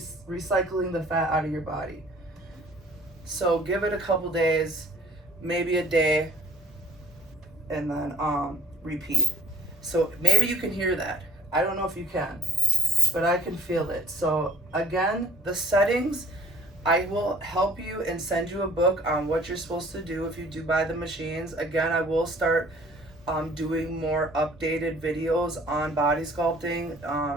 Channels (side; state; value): both; normal; correlation 0.58